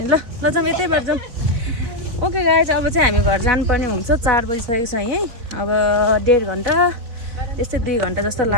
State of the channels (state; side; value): late; left; 4.2 ms